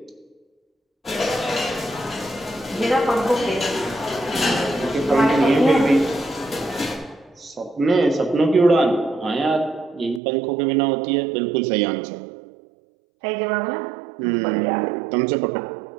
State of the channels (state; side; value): drops out; left; at 10.2 s